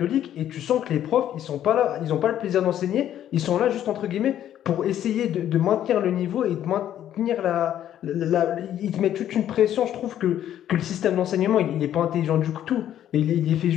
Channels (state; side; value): quieter; right; 11.1 dB